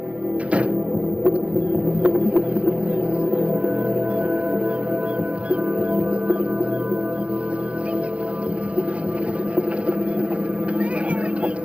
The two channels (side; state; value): left; late; 0.063 ms